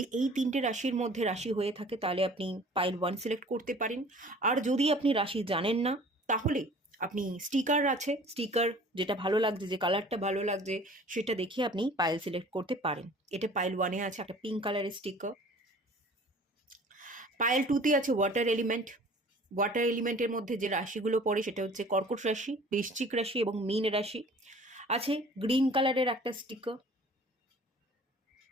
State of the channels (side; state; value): both; normal; correlation 0.48